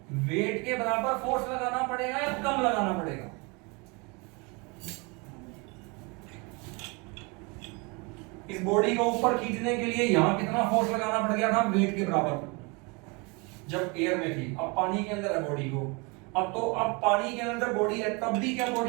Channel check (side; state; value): left; quieter; 29.2 dB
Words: वेट के बराबर फोर्स लगाना पड़ेगा या कम लगाना पड़ेगा? इस बॉडी को ऊपर खींचने के लिए यहां कितना फोर्स लगाना पड़ गया था, वेट के बराबर, जब एयर में थी। अब पानी के अंदर है बॉडी को, अब पानी के अंदर बॉडी है, तब भी क्या